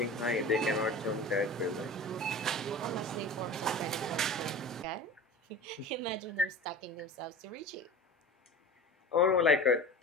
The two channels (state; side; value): normal; both; correlation 0.34